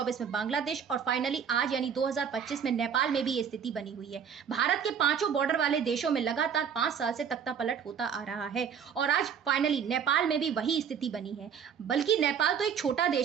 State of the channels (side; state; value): left; quieter; 7.4 dB